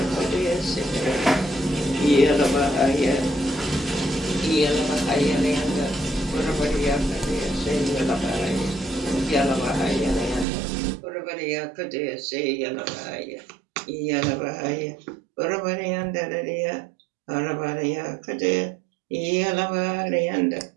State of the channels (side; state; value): left; drops out; at 10.5 s